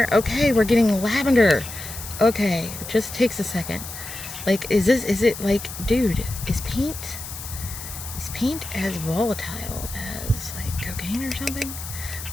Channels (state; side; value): noise; left; hiss, 10 dB below the sound